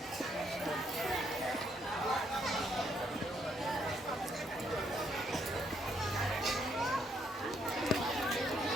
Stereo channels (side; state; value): both; normal; correlation 0.72